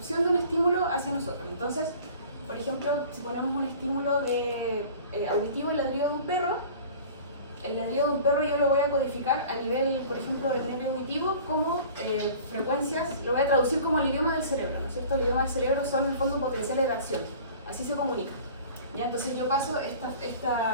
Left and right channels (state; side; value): inverted; both; correlation -0.44